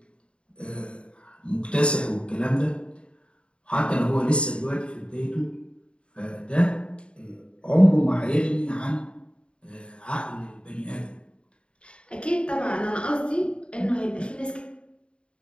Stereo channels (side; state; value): right; late; 0.055 ms